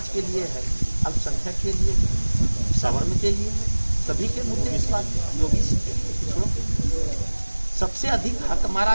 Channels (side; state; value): both; inverted; correlation -1.00